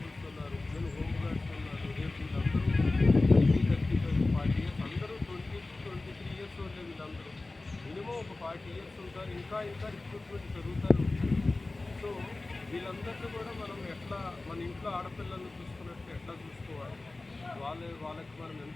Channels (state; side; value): quieter; right; 3.2 dB